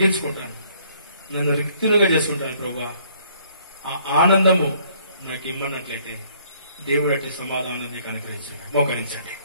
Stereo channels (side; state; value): both; inverted; correlation -0.62